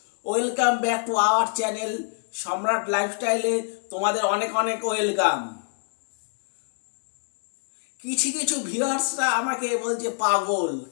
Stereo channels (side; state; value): right; silent; 61 dB below the other